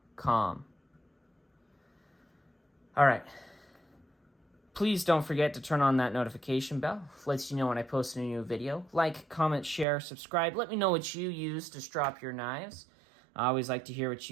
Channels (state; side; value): drops out; left; at 9.9 s